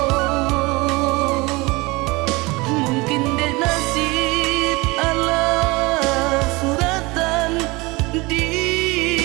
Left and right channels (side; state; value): left; quieter; 23.8 dB